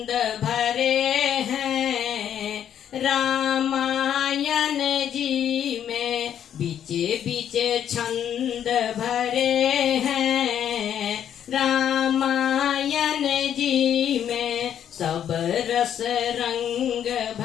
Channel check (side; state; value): right; quieter; 9.6 dB